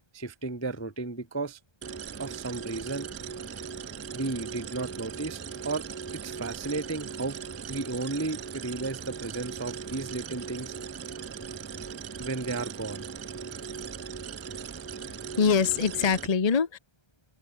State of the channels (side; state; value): right; late; 1.3 ms